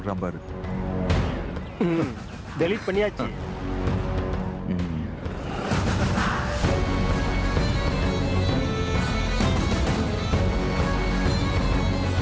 பாரு. டெலீட் பண்ணியாச்சு.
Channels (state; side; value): identical; both; correlation 1.00